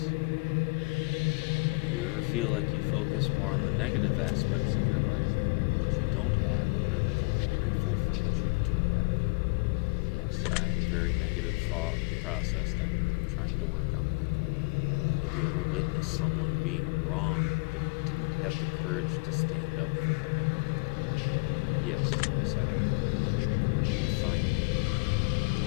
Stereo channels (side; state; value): right; quieter; 29.2 dB